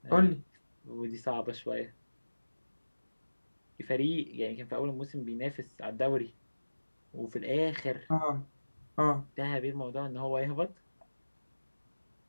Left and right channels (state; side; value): inverted; both; correlation -1.00